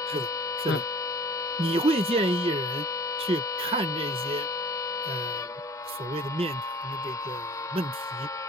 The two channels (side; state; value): both; normal; correlation 0.47